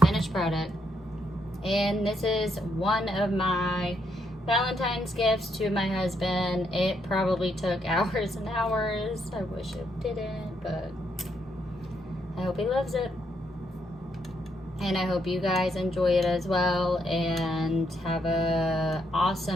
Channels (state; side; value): normal; both; correlation 0.76